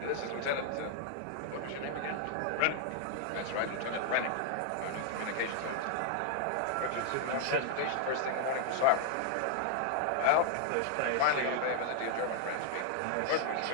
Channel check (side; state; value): both; different; correlation -0.01